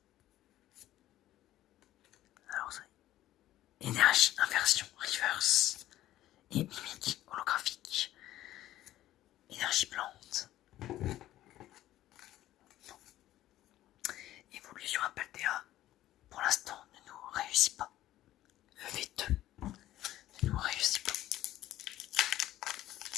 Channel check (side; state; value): right; quieter; 14.1 dB